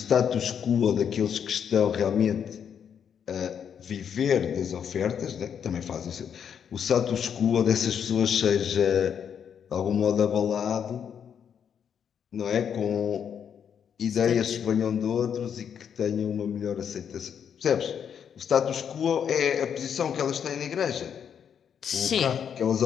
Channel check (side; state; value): right; quieter; 7.9 dB